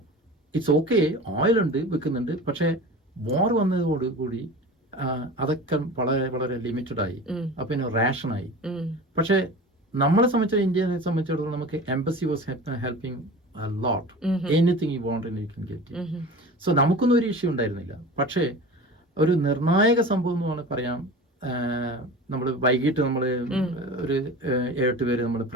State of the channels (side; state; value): both; normal; correlation 0.35